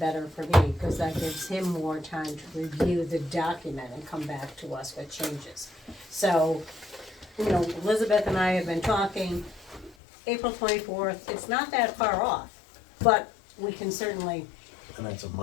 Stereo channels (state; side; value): drops out; right; at 10.0 s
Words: for me, because that gives him more time to review the document and come back to us with changes. So, Elizabeth and I have been talking, April 24th, it's not that far off, but we can certainly, And that's a